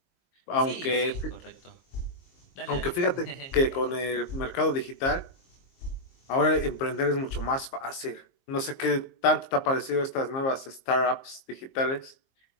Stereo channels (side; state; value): right; late; 22 ms